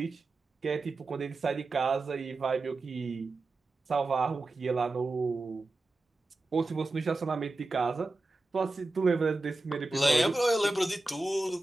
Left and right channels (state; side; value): quieter; left; 3.0 dB